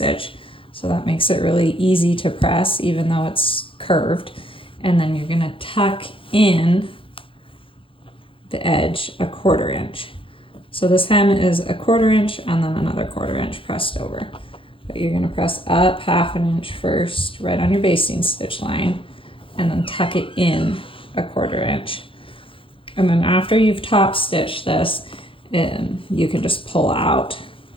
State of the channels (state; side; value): late; right; 0.25 ms